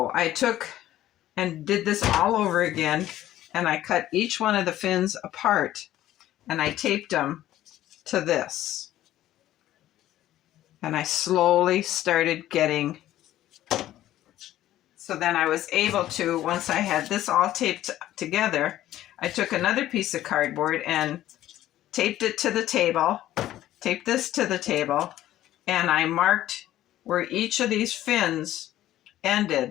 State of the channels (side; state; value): right; quieter; 13.7 dB